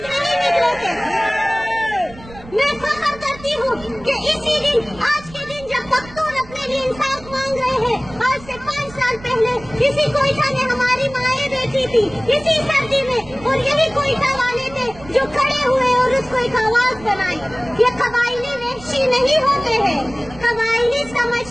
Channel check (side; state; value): right; noise; rumble, 19 dB below the sound